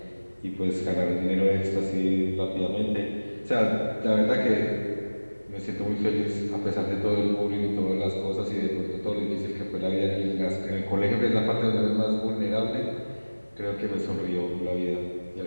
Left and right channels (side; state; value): both; inverted; correlation -1.00